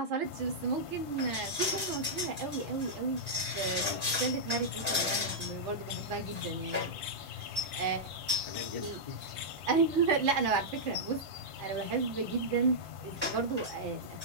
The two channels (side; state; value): both; normal; correlation -0.09